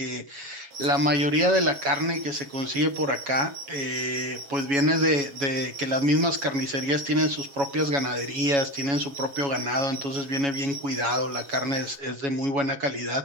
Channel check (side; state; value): left; late; 7.2 ms